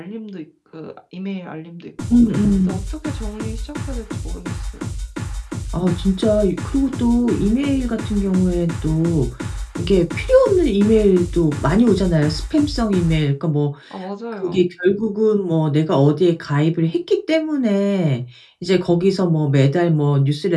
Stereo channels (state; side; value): identical; both; correlation 1.00